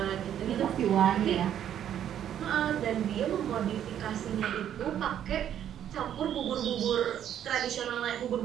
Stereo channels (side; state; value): left; quieter; 10.2 dB